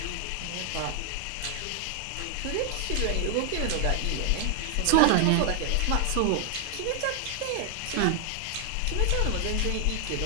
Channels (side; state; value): both; different; correlation 0.00